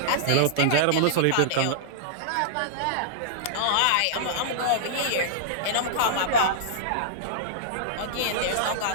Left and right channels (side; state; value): both; different; correlation -0.02